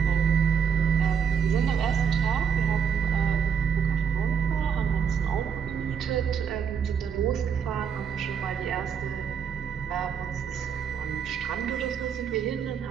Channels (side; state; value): left; quieter; 7.2 dB